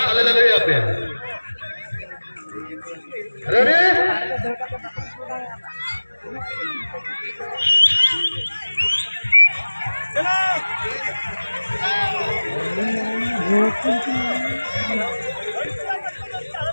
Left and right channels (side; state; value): both; inverted; correlation -1.00